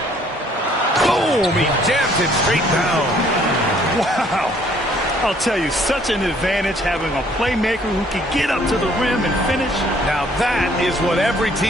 Boom! He jammed it straight down. Wow. I'll tell you, such an advantage having a playmaker who can get up to the rim and finish. Now that is what every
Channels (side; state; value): both; normal; correlation 0.61